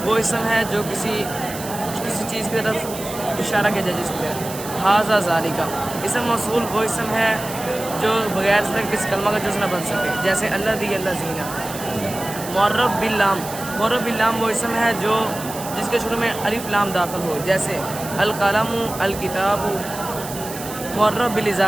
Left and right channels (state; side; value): noise; right; hiss, 11 dB below the sound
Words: وہ اسم ہے جو کسی چیز کی طرف اشارہ کیا جائے، جس کی طرف ھذا ذالک۔ اسم موصول وہ اسم ہے جو بغیر صرف کسی کلمہ کا جز نہ بن سکے، جیسے الذی الذین۔ معرب باللام وہ اسم ہے جس کے شروع میں الف لام داخل ہو، جیسے القلم الکتاب۔ معرب